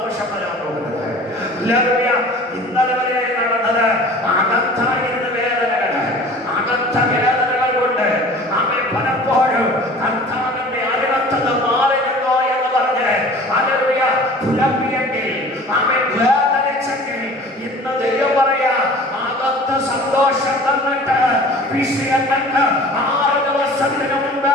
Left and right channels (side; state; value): both; normal; correlation 0.44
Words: വരാൻ പോകുന്നത്. ഇന്നലെ വരെ നടന്നത് അകത്തായിരുന്ന വേദനകള്, അകത്ത വേദനകൾ കൊണ്ട് പലപ്പോഴും കർത്താവിന്റെ അരുളത്തത് മാറിയല്ലോ എന്ന് പറഞ്ഞ് പുലപ്പിയെങ്കിൽ വേദനിച്ചെങ്കിൽ ഇന്ന് ദൈവം പറയാ, അകത്ത സന്തോഷം തന്നിട്ട് വിഷയങ്ങൾക്ക് 6 ദിവസത്തിന് മുമ്പ്